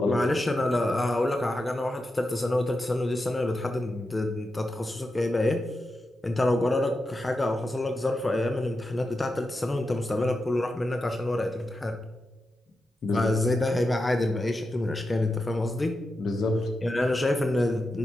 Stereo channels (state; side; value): normal; both; correlation 0.89